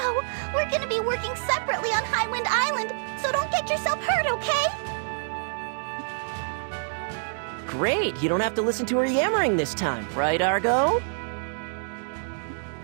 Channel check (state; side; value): silent; left; digital silence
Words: we're gonna be working separately on Highwind Island, so don't get yourself hurt, okay? Great, you don't have to listen to her yammering this time, right, Argo?